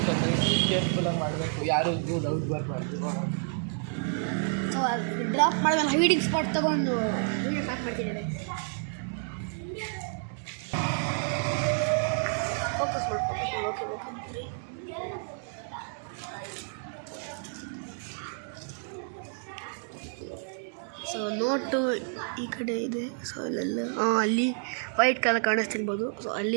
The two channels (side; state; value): left; silent; 58 dB below the other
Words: ಸೊ ಕೇರ್ಫುಲ್ಲಾಗಿ ಮಾಡಬೇಕು, ಯಾರು ಡೌಟ್ ಬರಬಾರ್ದು. ಸೊ ಡ್ರಾಪ್ ಮಾಡಿದ್ಮೇಲೆ ಹೈಡಿಂಗ್ ಸ್ಪಾಟ್ ತೊಗೊಂಡು ವೀಡಿಯೋ ಸ್ಟಾರ್ಟ್ ಮಾಡ್ತಿದ್ದೇವೆ. ಫೋಕಸ್ ಮಾಡ್ಕೊಂಡು ಓಕೆ. ಸೊ ನೋಟು ಈ ಕಡೆ ಇದೆ. ಸೊ ಅಲ್ಲೆಲ್ಲ ಅಲ್ಲಿ ವೈಟ್ ಕಲರ್ ಕಾಣಿಸ್ತಿರ್ಬೋದು. ಸೊ